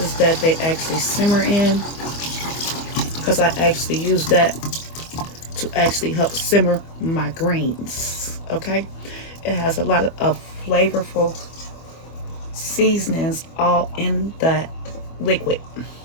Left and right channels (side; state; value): right; late; 25 ms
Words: that they actually simmer in, because I actually use that to actually help simmer my greens. Okay. It has a lot of flavorful seasonings all in that liquid.